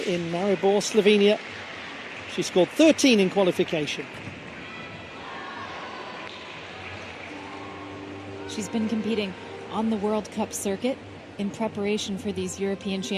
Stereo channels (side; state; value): both; identical; correlation 1.00